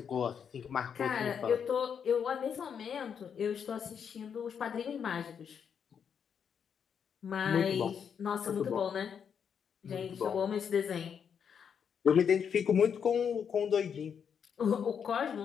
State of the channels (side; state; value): right; quieter; 7.4 dB